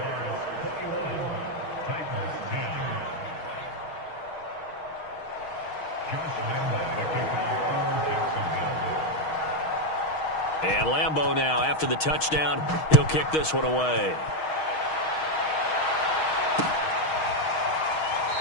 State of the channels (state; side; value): late; right; 6.3 ms